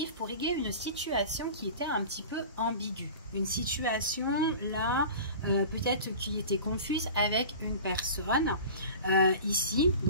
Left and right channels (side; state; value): both; inverted; correlation -0.37